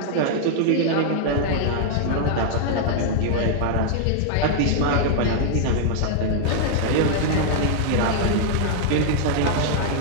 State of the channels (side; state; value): both; different; correlation 0.00